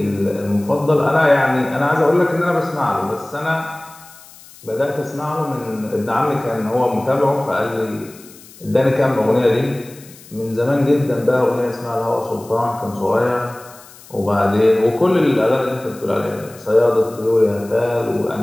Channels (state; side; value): noise; left; hiss, 22 dB below the sound